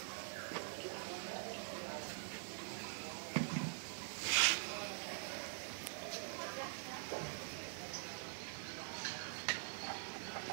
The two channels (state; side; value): silent; left; digital silence